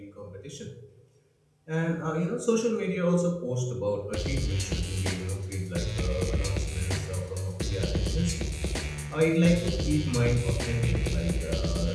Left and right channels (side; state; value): both; identical; correlation 1.00